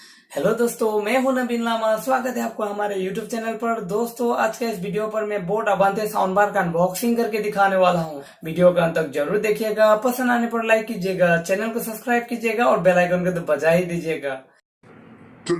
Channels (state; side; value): identical; both; correlation 1.00